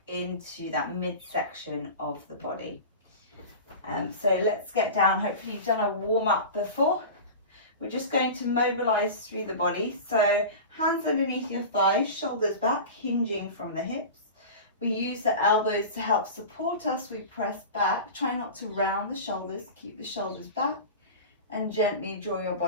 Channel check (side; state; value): both; inverted; correlation -0.31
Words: into that midsection of the body. So let's get down. Hopefully you've done a warm up before. We're just going to mobilize through the body. So hands underneath your thighs, shoulders back, hinging from the hips. We use the elbows to help support us. We press back. Try not to round the shoulders. Keep the shoulders back and gently draw your